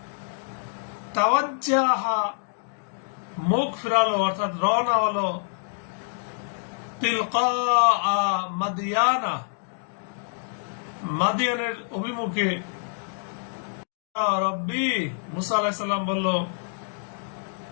তাওয়াজ্জাহা মুখ ফিরালো, অর্থাৎ রওনা হলো, তিলকা মাদিয়ানা, মাদিয়ানের অভিমুখে, রব্বি, মুসা আলাইহিস সালাম বলল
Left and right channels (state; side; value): silent; right; digital silence